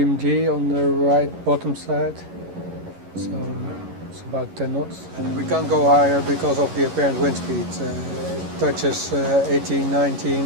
on the right bottom side. So it's about 10 knots. And we can't go higher because of the apparent wind speed. It touches 18,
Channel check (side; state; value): left; late; 11 ms